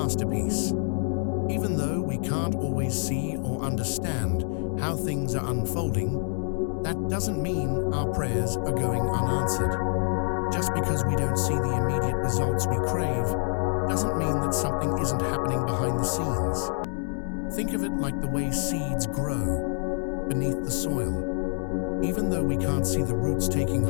Even though we can't always see or understand how things are unfolding, that doesn't mean our prayers are going unanswered. Just because we don't see the immediate results we crave doesn't mean that something isn't happening behind the scenes. Think of it like the way seeds grow beneath the soil. Even though we can't see the roots taking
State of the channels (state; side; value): silent; right; 60 dB below the other